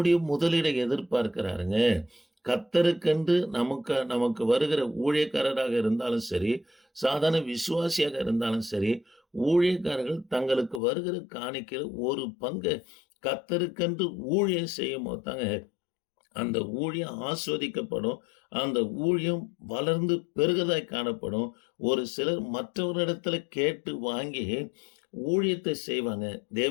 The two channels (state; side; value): drops out; right; at 10.8 s